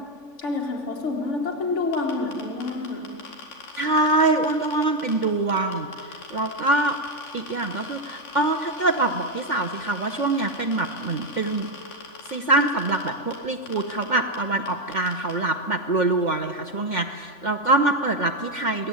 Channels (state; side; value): late; right; 3.5 ms